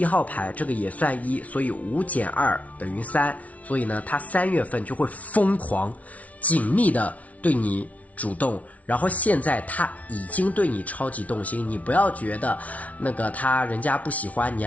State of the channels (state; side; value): late; right; 0.068 ms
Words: 号牌这个也算1，所以5减2等于3，所以呢他3月份就会疯狂紧密的对你主动，然后现在他已经对你超级动心，你不要觉得那个人家不喜欢你